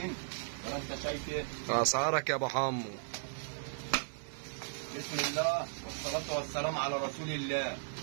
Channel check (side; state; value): left; silent; digital silence